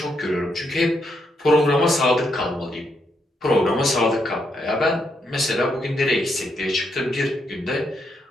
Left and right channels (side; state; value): both; normal; correlation 0.78